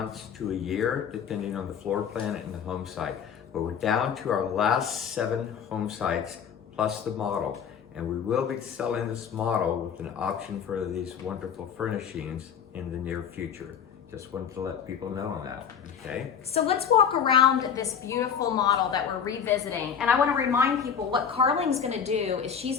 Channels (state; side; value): quieter; right; 7.5 dB